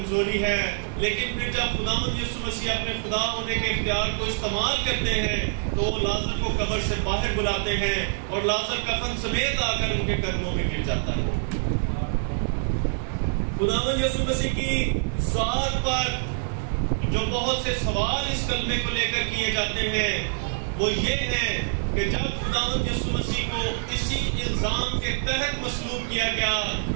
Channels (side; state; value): left; silent; 61 dB below the other